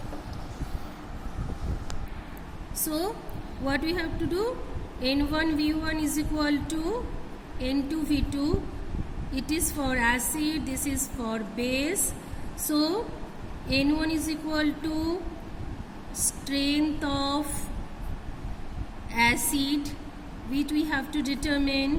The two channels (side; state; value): both; identical; correlation 1.00